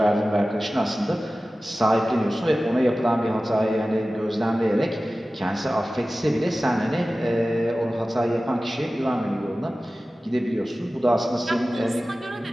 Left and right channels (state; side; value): normal; both; correlation 0.96